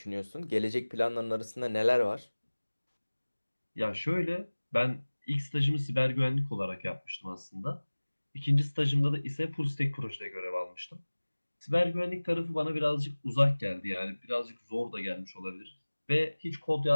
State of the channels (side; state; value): both; inverted; correlation -1.00